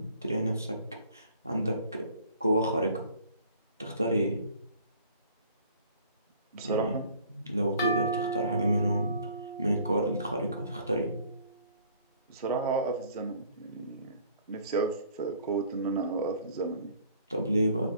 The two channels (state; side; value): inverted; both; correlation -0.55